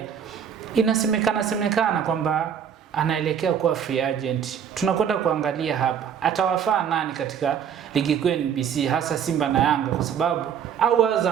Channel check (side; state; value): left; quieter; 8.2 dB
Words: inasemekana kwamba anaelekea kuwa free agent. Tunakwenda kuangalia hapa atawafaa nani katika ligi kuu NBC, hasa Simba na Yanga, kwa sababu au